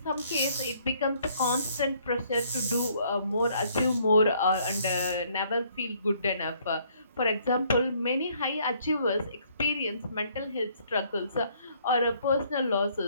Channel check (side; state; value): both; inverted; correlation -0.65